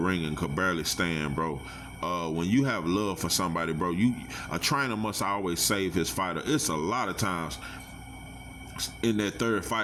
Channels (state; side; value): identical; both; correlation 1.00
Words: and could barely stand, bro. When you have love for somebody, bro, a trainer must always save his fighter. It's a lot of times in that third